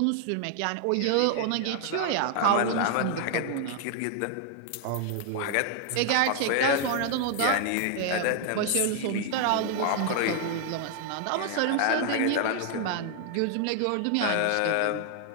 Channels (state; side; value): different; both; correlation 0.00